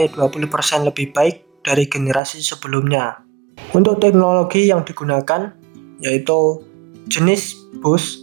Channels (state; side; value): drops out; left; at 2.2 s